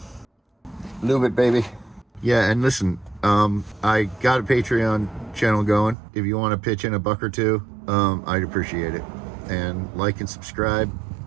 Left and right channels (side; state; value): left; drops out; at 6.0 s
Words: Lube it, baby. Yeah, and listen, I got a Patreon channel going. If you want to pitch in $1 or $2, I'd appreciate it. And like and subscribe,